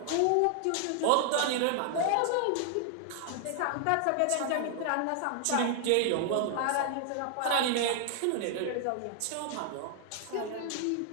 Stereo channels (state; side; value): different; both; correlation 0.00